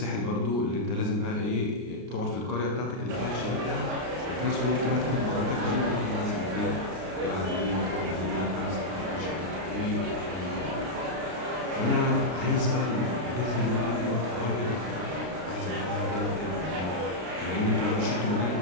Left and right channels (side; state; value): left; late; 32 ms